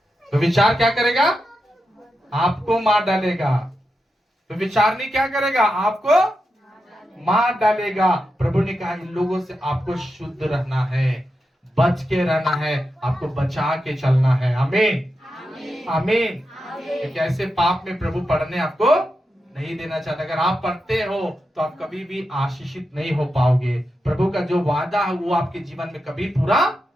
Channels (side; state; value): both; normal; correlation 0.88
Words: तो विचार क्या करेगा, आपको मार डालेगा। तो विचारनी क्या करेगा, आपको मार डालेगा। प्रभु ने कहा इन लोगों से आपको शुद्ध रहना है, बच के रहना है, आपको बचा के चलना है। आमीन, आमीन। एक ऐसे पाप में प्रभु पढ़ने आपको नहीं देना चाहता। अगर आप पढ़ते हो तो आप कभी भी आशीषित नहीं हो पाओगे। प्रभु का जो वादा है वो आपके जीवन में कभी पूरा